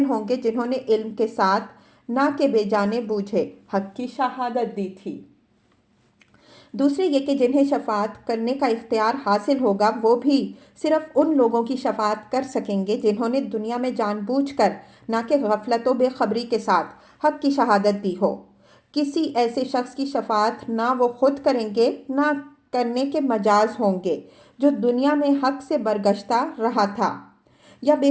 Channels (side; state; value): both; identical; correlation 1.00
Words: ہوں گے جنہوں نے علم کے ساتھ نہ کہ بے جانے بوجھے حق کی شہادت دی تھی۔ دوسرے یہ کہ جنہیں شفاعت کرنے کا اختیار حاصل ہوگا وہ بھی صرف ان لوگوں کی شفاعت کر سکیں گے جنہوں نے دنیا میں جان بوجھ کر نہ کہ غفلت و بے خبری کے ساتھ حق کی شہادت دی ہو۔ کسی ایسے شخص کی شفاعت نہ وہ خود کریں گے نہ کرنے کے مجاز ہوں گے جو دنیا میں حق سے برگشتہ رہا تھا یا